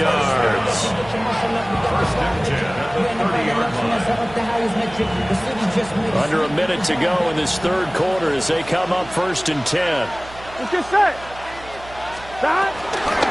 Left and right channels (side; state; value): right; noise; hum, 18 dB below the sound